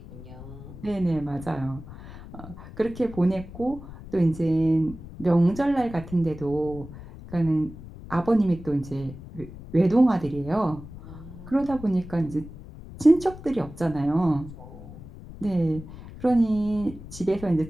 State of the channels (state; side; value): noise; left; rumble, 15 dB below the sound